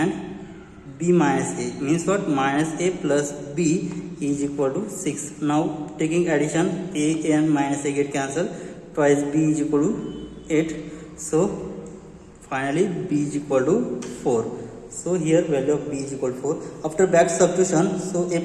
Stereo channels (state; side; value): identical; both; correlation 1.00